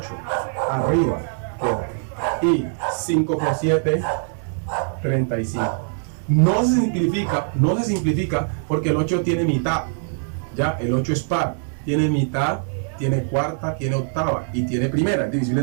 arriba, y 5 por 7, 35. No se simplifica porque el 8 tiene mitad, ya, el 8 es par, tiene mitad, tiene cuarta, tiene octava y tiene primera, es divisible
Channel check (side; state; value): left; silent; digital silence